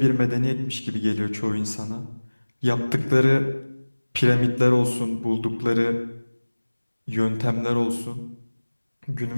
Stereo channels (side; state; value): both; inverted; correlation -1.00